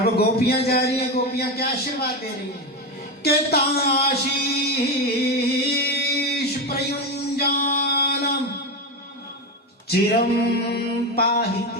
गोपियां जा रही हैं, गोपियां क्या आशीर्वाद दे रही हैं? के ताशीष प्रयुंजानम चिरम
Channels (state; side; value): normal; both; correlation 0.15